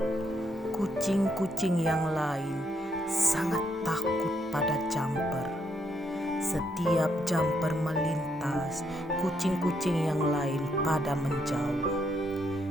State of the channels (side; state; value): both; normal; correlation 0.76